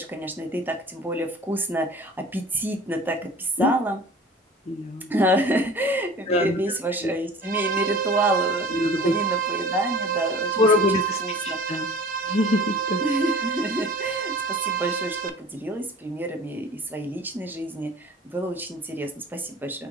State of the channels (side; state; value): both; normal; correlation 0.43